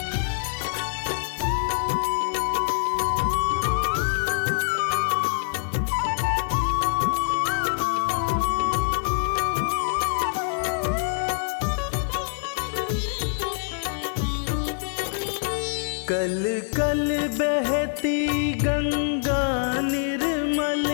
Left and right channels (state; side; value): silent; right; digital silence